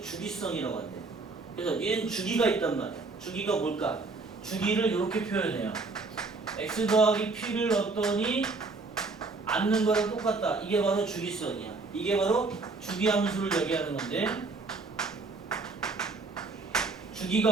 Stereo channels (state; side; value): quieter; left; 3.7 dB